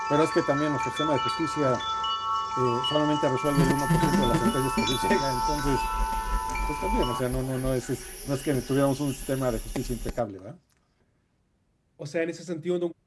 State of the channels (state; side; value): identical; both; correlation 1.00